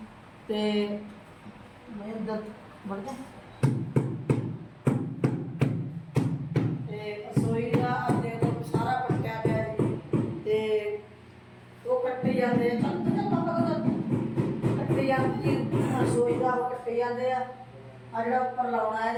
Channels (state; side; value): identical; both; correlation 1.00